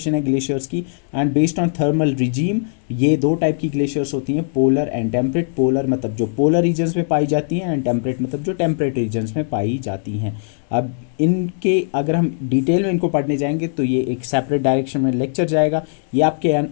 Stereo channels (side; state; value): right; silent; digital silence